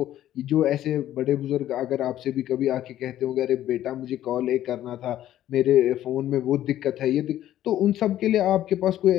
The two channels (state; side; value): quieter; right; 12.7 dB